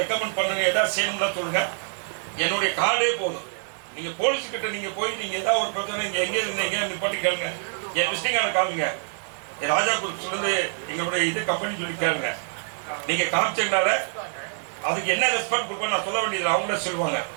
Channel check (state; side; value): silent; left; digital silence